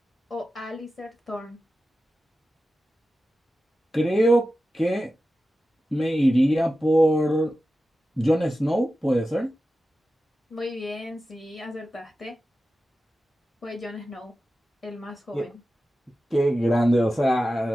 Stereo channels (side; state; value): both; normal; correlation 0.93